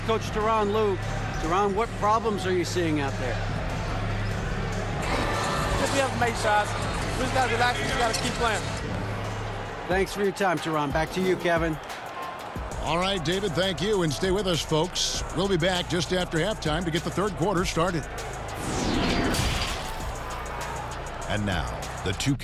Coach Tyronn Lue. Tyronn, what problems are you seeing out there? Just we have to make shots. We just got to relax and just got to keep playing. Thanks for your time, Tyronn. Back to you, Kevin. All right, David, thank you. And stay with us, folks. We'll be back just after halftime to get the third quarter started. And now, the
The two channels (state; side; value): identical; both; correlation 1.00